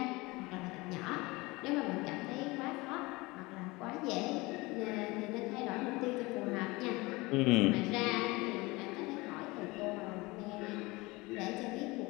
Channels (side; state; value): right; quieter; 23.0 dB